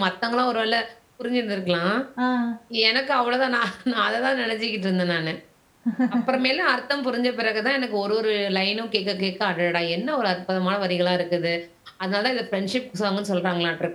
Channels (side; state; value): both; identical; correlation 1.00